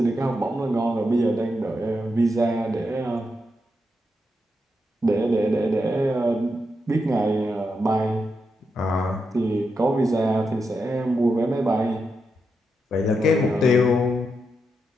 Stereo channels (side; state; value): both; normal; correlation 0.85